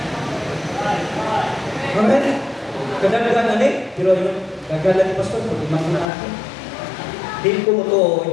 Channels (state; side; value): drops out; right; at 6.1 s